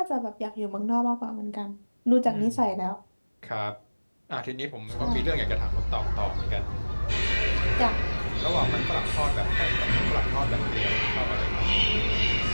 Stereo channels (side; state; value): both; inverted; correlation -1.00